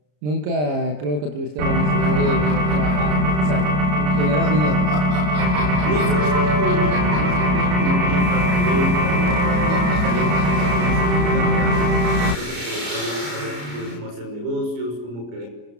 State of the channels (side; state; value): left; late; 33 ms